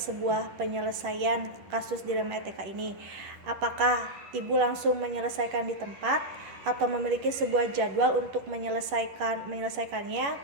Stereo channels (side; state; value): left; late; 10 ms